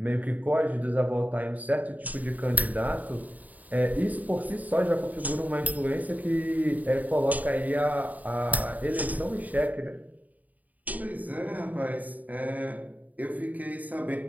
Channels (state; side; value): late; left; 0.076 ms